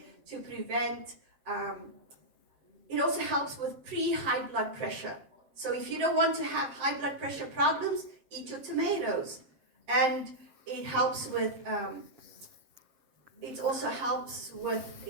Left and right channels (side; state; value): left; late; 7.7 ms